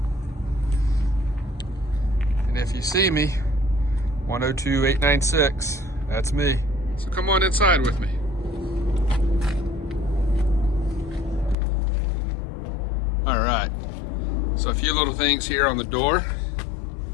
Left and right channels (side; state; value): right; drops out; at 11.6 s